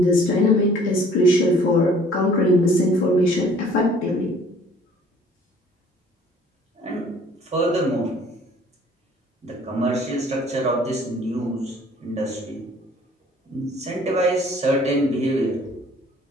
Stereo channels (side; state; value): both; normal; correlation 0.54